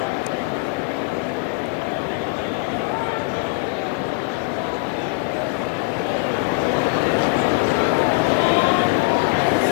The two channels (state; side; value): quieter; right; 25.7 dB